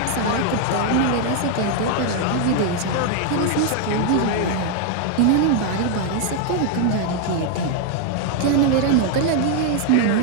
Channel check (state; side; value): different; both; correlation 0.00